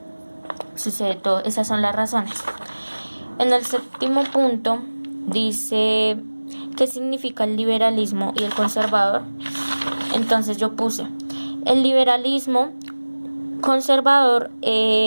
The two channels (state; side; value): inverted; both; correlation -1.00